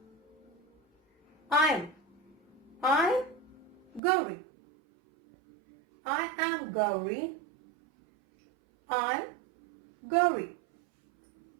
I'm Gauri. I am Gauri. I'm Gauri.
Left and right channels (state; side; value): drops out; left; at 4.0 s